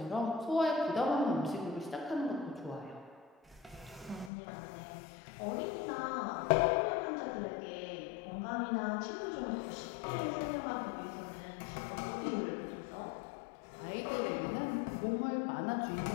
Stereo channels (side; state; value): right; drops out; at 4.3 s